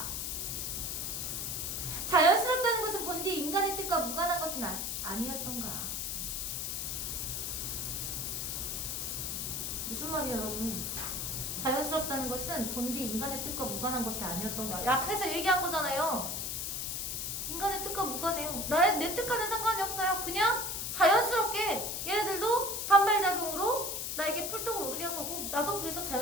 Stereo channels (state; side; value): noise; left; hiss, 2 dB below the sound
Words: 자연스럽다는 것은 본디 인간의 뜻과 무관한 것은 아니었던가? 무슨 말이에요 여러분? 자연스럽다는 것은 본디 인간의 뜻과 무관한 것이 아니었던가? 앞에서 얘기한 거잖아요. 인간의 뜻과 무관해요. 내 뜻과는 상관이 없어요. 그냥 자연스럽게 얘네들도 반발작용으로 나에게 풀독을 오르게 한 거고 나도 그래서